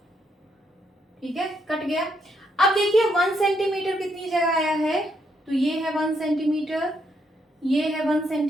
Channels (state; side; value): normal; both; correlation 0.75